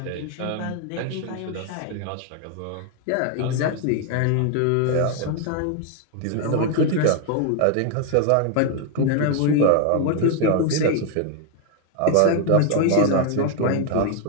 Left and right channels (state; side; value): different; both; correlation 0.00